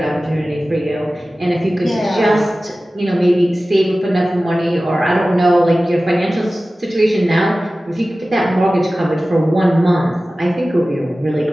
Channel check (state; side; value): normal; both; correlation 0.96